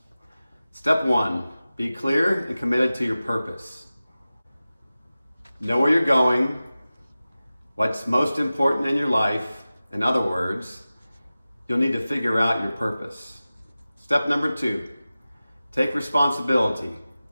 Step 1, be clear and committed to your purpose. Know where you're going, what's most important in your life. In other words, you'll need to figure out your purpose. Step number 2, take responsibility.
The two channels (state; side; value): inverted; both; correlation -0.96